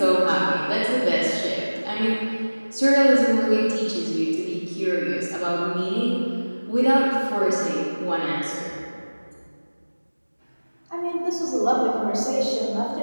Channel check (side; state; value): both; inverted; correlation -1.00